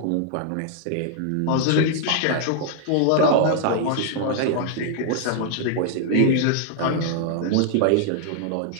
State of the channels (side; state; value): both; different; correlation 0.00